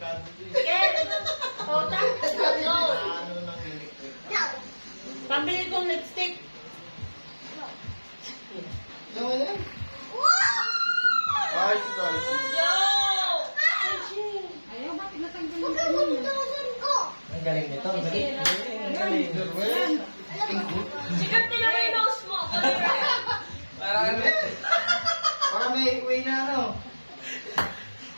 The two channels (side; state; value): both; inverted; correlation -1.00